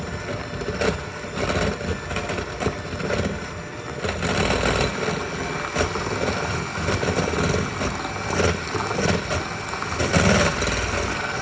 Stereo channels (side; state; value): both; identical; correlation 1.00